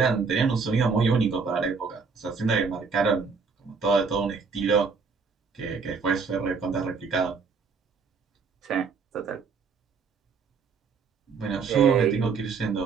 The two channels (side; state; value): left; quieter; 5.2 dB